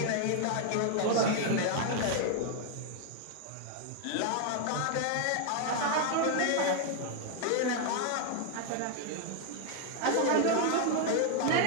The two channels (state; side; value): different; both; correlation 0.00